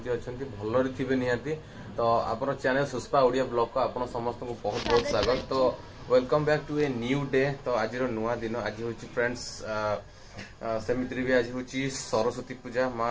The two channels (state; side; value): identical; both; correlation 1.00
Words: अछंती भलरे थिबे निहाती। तो आपन चैनल सुस्पा ओडिया ब्लॉग को आपन समस्त को बहुत बहुत स्वागत। तो welcome back to a new day. तो आज नुआ दिन आज होछि फ्रेंड्स सेमित्री भी आज होछि सरस्वती पूजा।